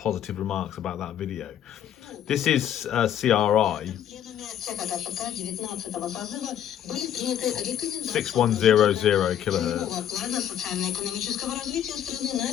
remarks about that video. This is CRI 6100 kilohertz,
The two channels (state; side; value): quieter; right; 10.3 dB